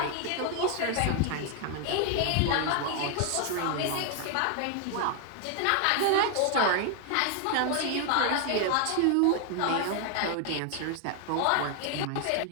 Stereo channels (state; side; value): different; both; correlation 0.00